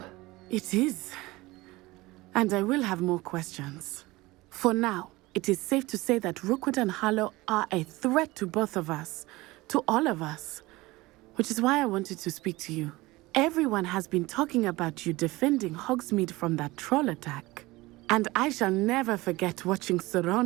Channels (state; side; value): quieter; left; 20.6 dB